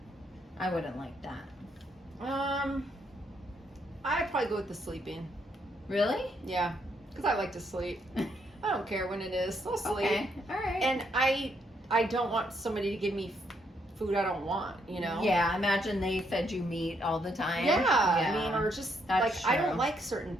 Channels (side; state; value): both; normal; correlation 0.74